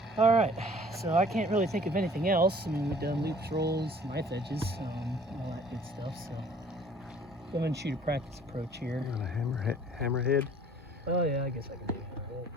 Alright, so I can't really think of anything else. I mean, we've done loops, rolls, knife edges, all that good stuff, so. Go ahead and shoot a practice approach here. On a hammerhead? Oh yeah, I guess I can do a hammerhead. It's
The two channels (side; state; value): both; normal; correlation 0.53